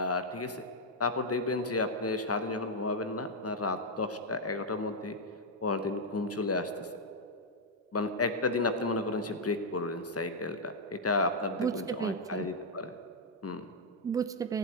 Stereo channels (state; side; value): normal; both; correlation -0.03